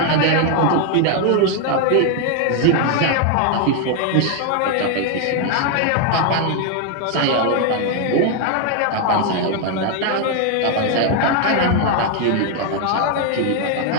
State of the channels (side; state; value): both; different; correlation 0.01